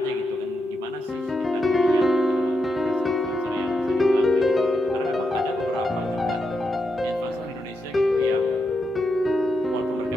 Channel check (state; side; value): normal; both; correlation 0.84